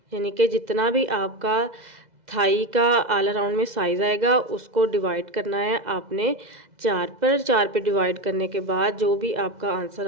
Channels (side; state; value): left; late; 2.0 ms